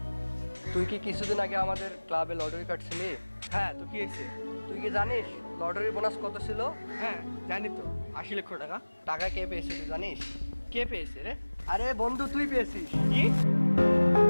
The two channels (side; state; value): both; inverted; correlation -1.00